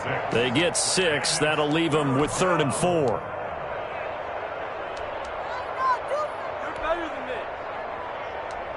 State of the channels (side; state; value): both; identical; correlation 1.00